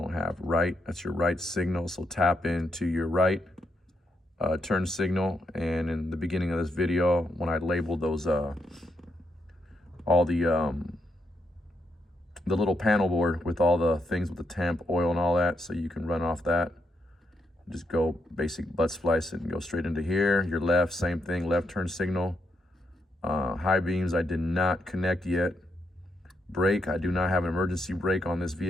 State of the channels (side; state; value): both; normal; correlation 0.80